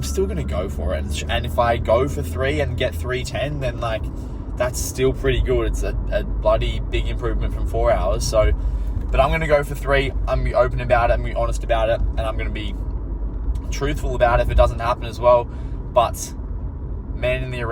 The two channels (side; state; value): both; identical; correlation 1.00